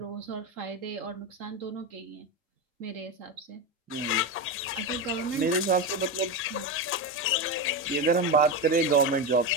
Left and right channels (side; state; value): both; normal; correlation 0.15